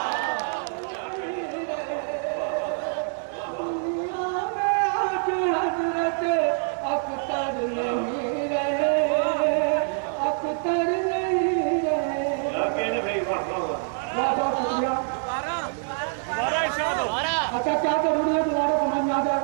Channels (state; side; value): silent; left; 61 dB below the other